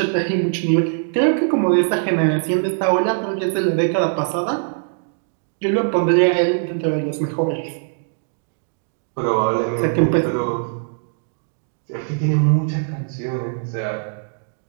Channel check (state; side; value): silent; left; digital silence